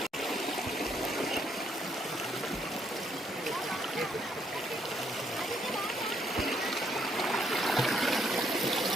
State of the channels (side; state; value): both; normal; correlation 0.72